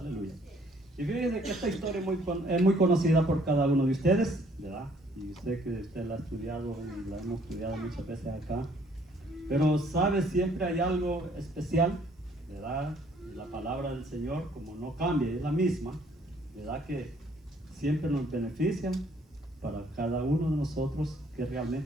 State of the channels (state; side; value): normal; both; correlation 0.63